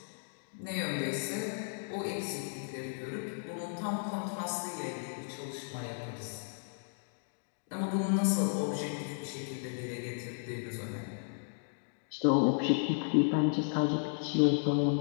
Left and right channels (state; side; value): silent; right; digital silence